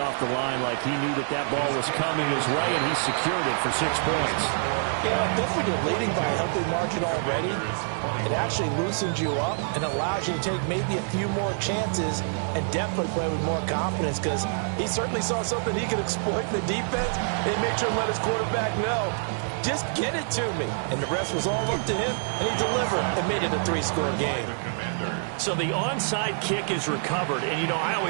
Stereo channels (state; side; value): silent; left; digital silence